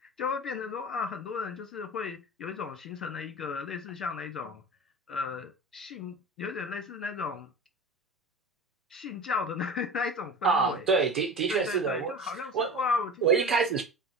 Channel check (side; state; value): both; normal; correlation 0.33